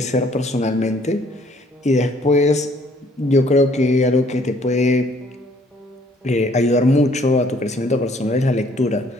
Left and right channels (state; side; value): normal; both; correlation 0.61